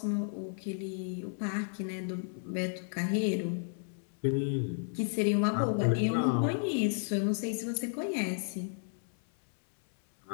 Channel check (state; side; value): silent; right; 56 dB below the other